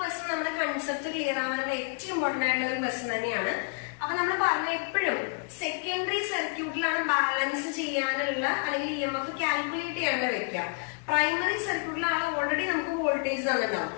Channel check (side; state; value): right; quieter; 33.7 dB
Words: നമ്മുടെ കൺസെപ്റ്റ് ക്ലിയർ ആവാനുള്ള ഏറ്റവും ഇമ്പോർട്ടന്റ് ആയിട്ടുള്ള ഒരു ക്വസ്റ്റ്യൻ തന്നെയാണ്. അപ്പൊ നമ്മൾ പറഞ്ഞ എപ്പോഴും സെക്കൻഡറി സർക്യൂട്ടിലാണ് ബാലൻസ് ചെയ്യാനുള്ള അല്ലെങ്കിൽ EMF കാൽക്കുലേറ്റ് ചെയ്യാനുള്ള വെക്കുക. പ്രൈമറി സർക്യൂട്ടിലാണ് ഓൾറെഡി നമുക്ക് വോൾട്ടേജ് തന്നിട്ടുണ്ടാവും.